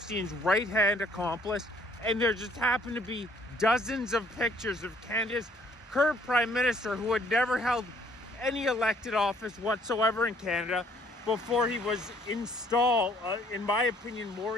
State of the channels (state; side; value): normal; both; correlation 0.62